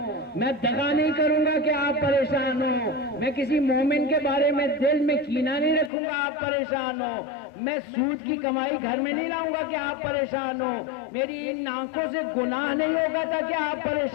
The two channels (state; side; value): drops out; right; at 5.9 s